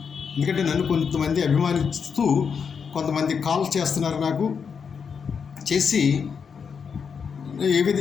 ఎందుకంటే నన్ను కొంతమంది అభిమానిస్తూ కొంతమంది కాల్ చేస్తున్నారు, నాకు చేసి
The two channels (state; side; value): quieter; right; 6.3 dB